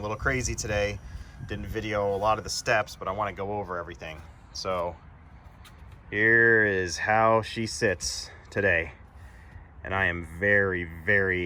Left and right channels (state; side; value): identical; both; correlation 1.00